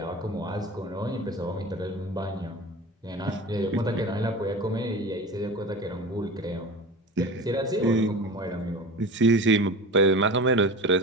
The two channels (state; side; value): normal; both; correlation 0.32